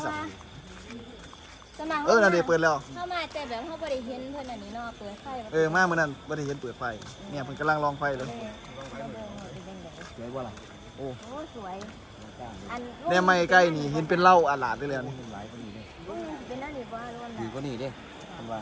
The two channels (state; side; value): identical; both; correlation 1.00